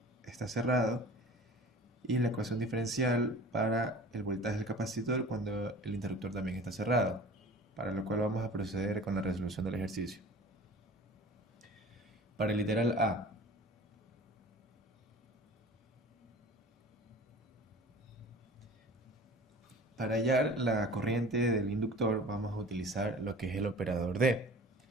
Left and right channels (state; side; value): normal; both; correlation 0.42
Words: está cerrado y la ecuación diferencial para el voltaje del capacitor cuando el interruptor también está cerrado, para lo cual vamos a proceder con la resolución del ejercicio. Para el literal A, para hallar la corriente del inductor vamos a utilizar lo que es el operador D.